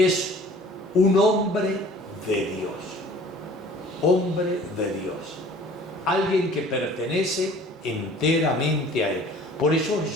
un hombre de Dios. Hombre de Dios. Alguien que pertenece enteramente a Él. Por eso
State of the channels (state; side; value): normal; both; correlation 0.49